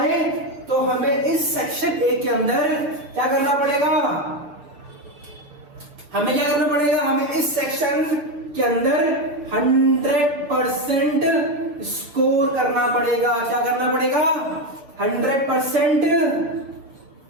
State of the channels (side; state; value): left; late; 6.8 ms